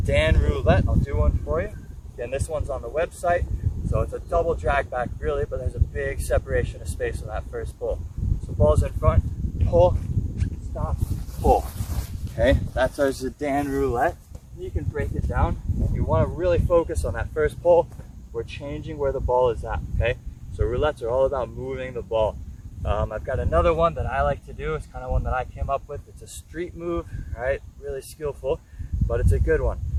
roulette. I'll do one for you. Again, this one's on the website. So it's a double drag back really, but there's a big separation of space on that first pull. So ball's in front, pull, stop, pull. Okay, that's our Zidane roulette. You can break it down. If you want to really focus on that first pull, we're changing where the ball is at, okay? So roulettes are all about moving the ball. I've got another one that I like to do. It's kind of one that I came up with. It's a street move, right? Really skillful, but it's a good one.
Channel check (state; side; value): identical; both; correlation 1.00